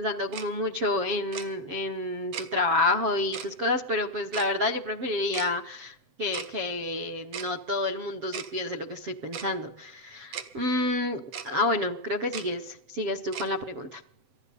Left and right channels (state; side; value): late; left; 7.8 ms